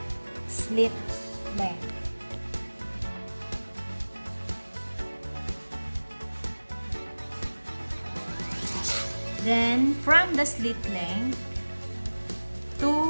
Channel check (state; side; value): inverted; both; correlation -1.00